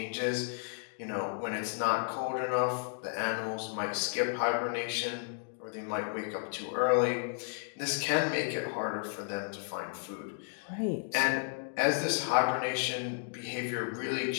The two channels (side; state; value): right; silent; 56 dB below the other